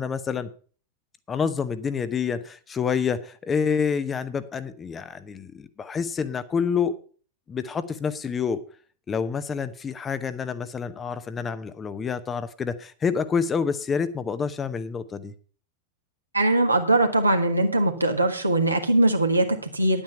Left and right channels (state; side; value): normal; both; correlation -0.13